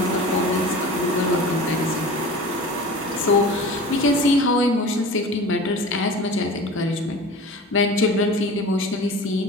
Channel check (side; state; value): both; normal; correlation 0.37